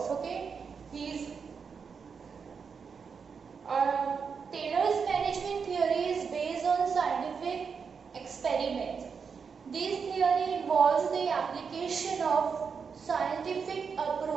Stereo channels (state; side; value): quieter; left; 5.9 dB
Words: Okay, Taylor's management theory is based on scientific experiments. This theory involves the application of scientific